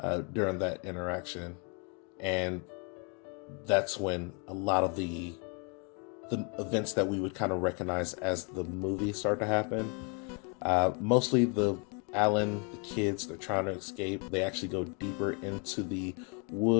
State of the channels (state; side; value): quieter; right; 36.0 dB